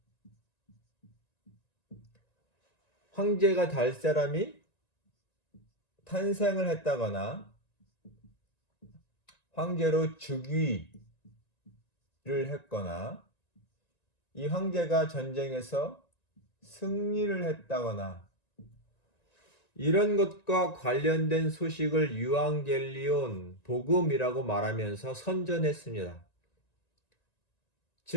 황제가 될 사람이 탄생을 했다거나 황제로 즉위를 했거나 이 황제가 전쟁에서 승리를 했다거나 이런 것과 관련된 소식을 유앙겔리온, 복음이라고 말하면서 선전했습니다.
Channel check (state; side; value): late; right; 1.9 ms